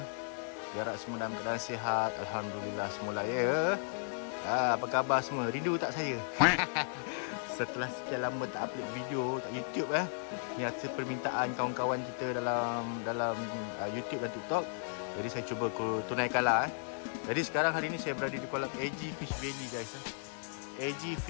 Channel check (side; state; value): right; silent; 54 dB below the other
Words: Harap semua dalam keadaan sihat. Alhamdulillah semula ya. Apa khabar semua? Rindu tak saya? Setelah sekian lama tak upload video kat YouTube ni atas permintaan kawan-kawan kita dalam YouTube dan TikTok. Jadi saya cuba tunaikanlah. Jadi sekarang hari ni saya berada di kolam AG Fish Valley guys. AG